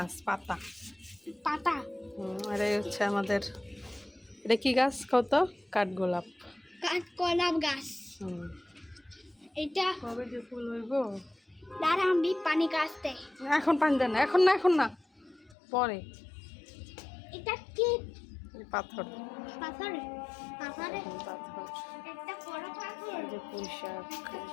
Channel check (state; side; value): drops out; right; at 15.6 s